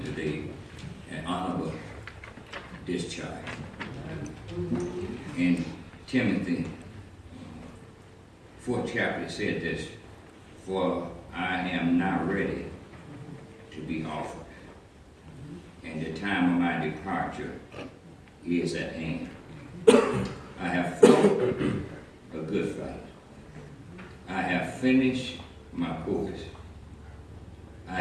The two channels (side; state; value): both; identical; correlation 1.00